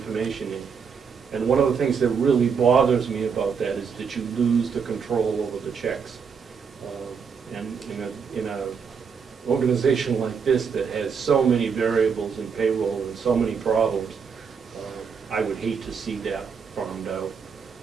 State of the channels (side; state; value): left; quieter; 6.2 dB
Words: in. And one of the things that really bothers me about that is that you lose the control over the checks. And in an organization like this that has so many variables in payroll and so many problems, I would hate to see that farmed out.